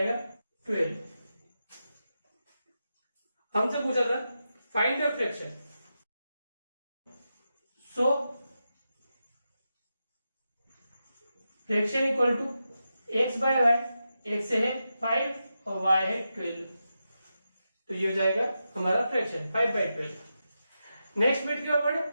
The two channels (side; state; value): both; inverted; correlation -0.89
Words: 12। हमसे पूछा था find the fraction, so fraction equal to x by y, x है 5 और y है 12, तो ये हो जाएगा हमारा फ्रैक्शन 5/12। नेक्स्ट बिट की ओर बढ़े,